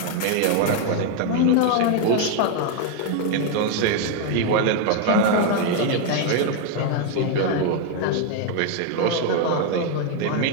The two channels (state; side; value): different; both; correlation 0.01